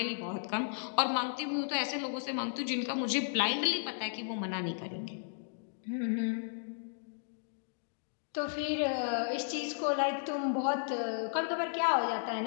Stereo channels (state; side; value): silent; right; digital silence